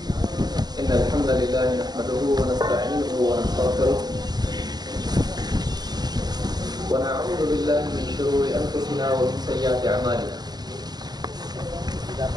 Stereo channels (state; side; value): late; left; 0.20 ms